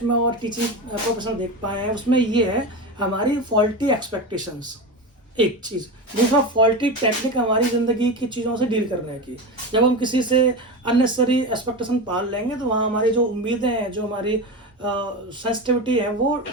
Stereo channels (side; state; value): both; normal; correlation 0.22